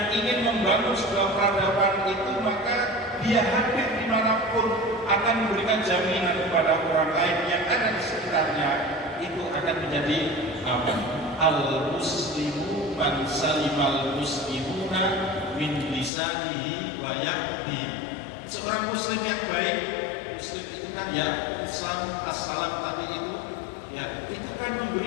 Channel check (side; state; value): right; drops out; at 16.1 s